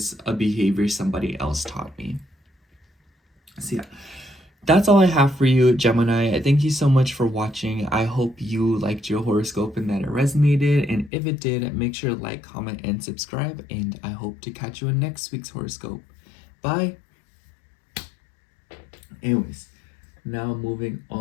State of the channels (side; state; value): right; drops out; at 11.1 s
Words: a behavior somebody else taught me? So yeah, that's all I have for you, Gemini. Thank you so much for watching. I hope you liked your horoscope and that it resonated. And if it did, make sure to like, comment, and subscribe. And I hope to catch you in next week's horoscope. Bye. Anyways, now moving